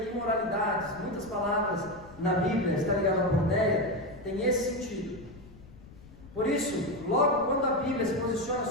imoralidades, muitas palavras na Bíblia está ligada à pornéia, tem esse sentido. Por isso, logo quando a Bíblia se posiciona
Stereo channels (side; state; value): left; noise; rumble, 20 dB below the sound